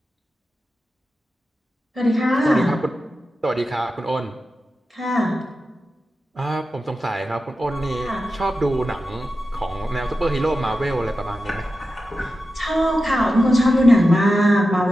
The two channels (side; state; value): both; normal; correlation 0.91